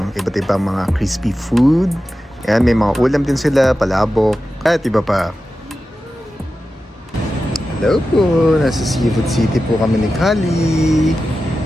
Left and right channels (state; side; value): normal; both; correlation 0.93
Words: iba't ibang mga crispy food. Ayan, may mga ulam din sila, palabok, at iba pa. Hello po, nasa Seafood City po kami ni Kali.